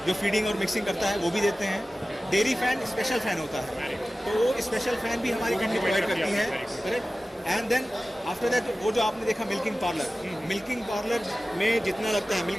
जो फीडिंग और मिक्सिंग करता है वो भी देते हैं। डेयरी फैन स्पेशल फैन होता है, तो वो स्पेशल फैन भी हमारी कंपनी प्रोवाइड करती है। Correct, and then after that वो जो आपने देखा मिल्किंग पार्लर, मिल्किंग पार्लर में जितना लगता है,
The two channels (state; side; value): normal; both; correlation 0.96